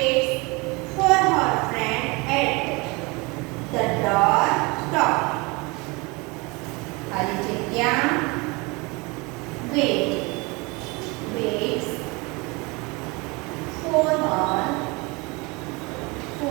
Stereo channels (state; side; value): quieter; left; 26.6 dB